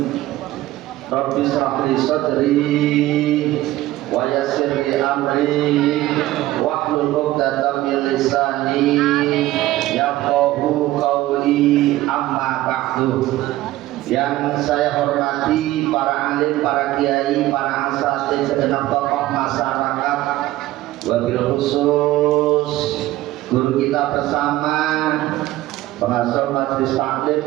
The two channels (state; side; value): quieter; left; 16.2 dB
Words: Rabbi shrah li sadri wa yassir li amri wahlul 'uqdatam min lisani yafqahu qawli, amma ba'du. Yang saya hormati para alim, para kiai, para asatidz, segenap tokoh masyarakat, wabil khusus guru kita bersama, pengasuh majelis